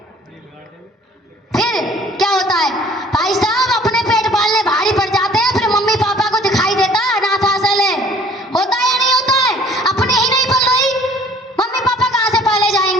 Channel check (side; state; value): both; normal; correlation 0.53